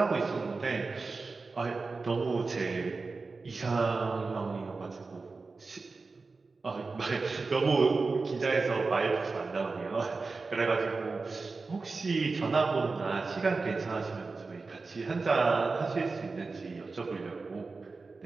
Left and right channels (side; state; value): left; quieter; 4.0 dB